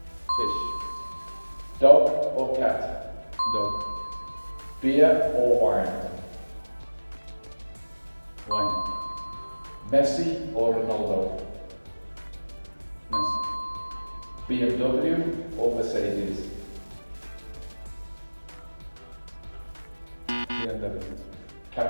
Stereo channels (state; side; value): inverted; both; correlation -1.00